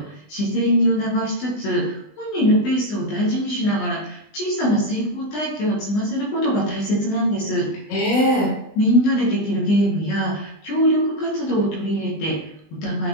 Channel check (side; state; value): right; late; 20 ms